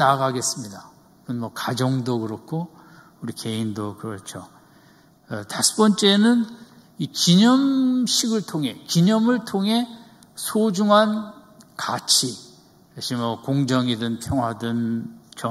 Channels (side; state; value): both; identical; correlation 1.00